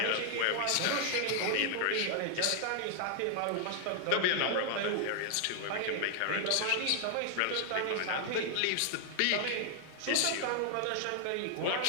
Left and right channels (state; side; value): different; both; correlation 0.00